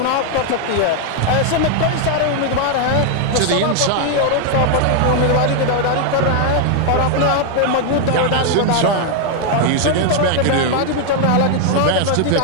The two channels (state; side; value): different; both; correlation 0.00